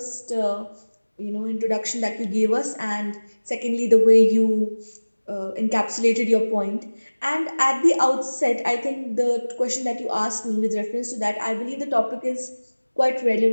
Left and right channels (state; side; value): inverted; both; correlation -1.00